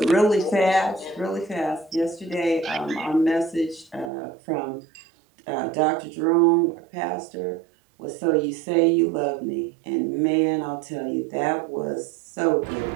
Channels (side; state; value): left; drops out; at 4.1 s